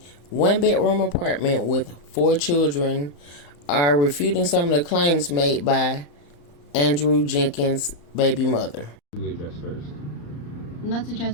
one-bedroom apartment with 4 children are refuting some of the claims made by Andrew Jenkins' baby mother. What do we address first? Let's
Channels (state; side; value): late; right; 34 ms